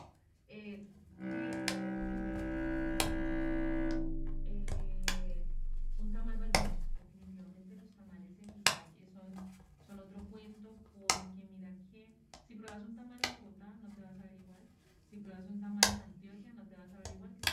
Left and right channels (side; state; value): both; identical; correlation 1.00